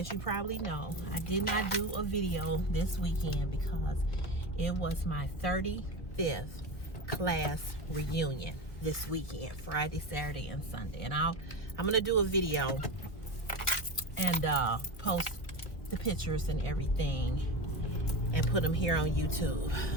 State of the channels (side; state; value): right; late; 1.9 ms